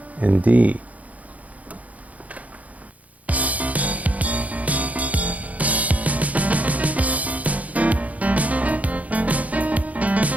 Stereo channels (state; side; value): late; left; 0.071 ms